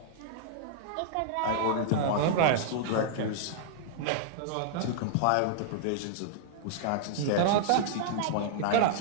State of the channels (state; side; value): different; both; correlation -0.01